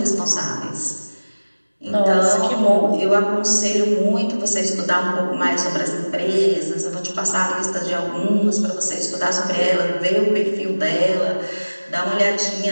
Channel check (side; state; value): both; inverted; correlation -1.00